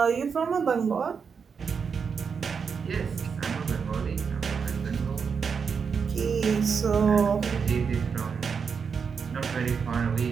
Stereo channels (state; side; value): quieter; left; 6.0 dB